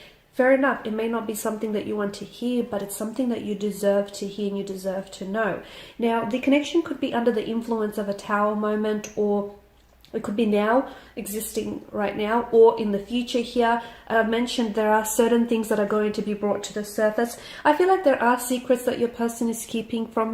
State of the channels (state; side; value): identical; both; correlation 1.00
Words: fair enough, it may not be something that you want to hear, but it's something that you deserve to hear and you deserve to know. Now, the connection could be under the influence of a Tower moment, or it could be now, existing right now, or in the future here. I've mentioned there are certain things that are going to be brought to the surface. I feel like there are secrets that your person is keeping